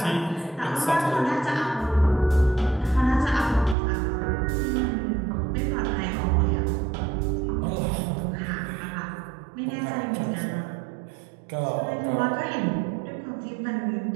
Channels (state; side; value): drops out; left; at 3.8 s